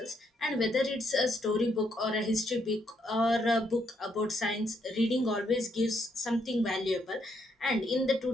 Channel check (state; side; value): normal; both; correlation 0.75